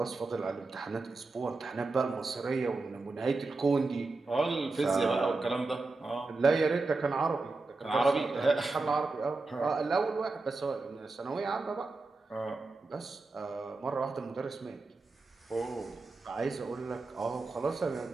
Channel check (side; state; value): left; quieter; 3.5 dB